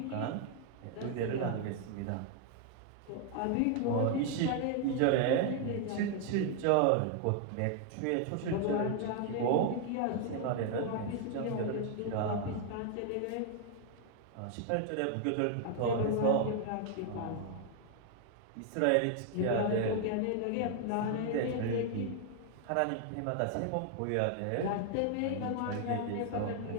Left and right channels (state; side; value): different; both; correlation 0.00